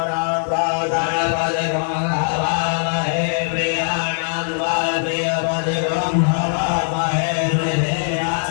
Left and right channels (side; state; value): right; silent; 64 dB below the other